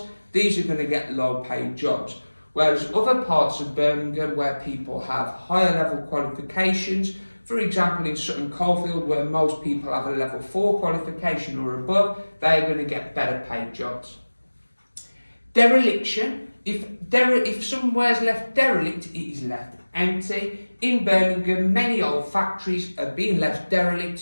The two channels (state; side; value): inverted; both; correlation -1.00